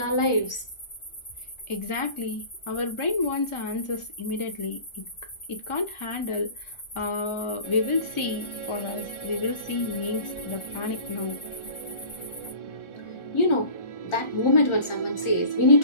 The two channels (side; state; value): right; late; 1.4 ms